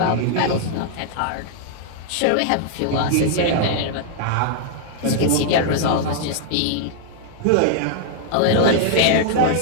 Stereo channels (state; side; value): different; both; correlation -0.01